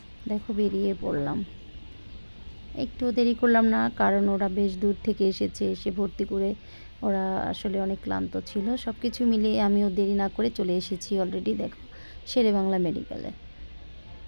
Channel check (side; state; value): both; inverted; correlation -1.00